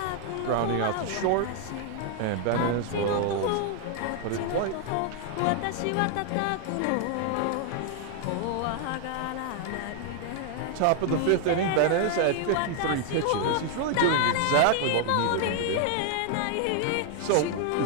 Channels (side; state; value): both; different; correlation 0.00